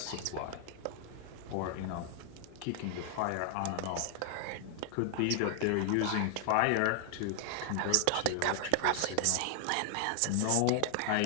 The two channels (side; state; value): both; different; correlation 0.00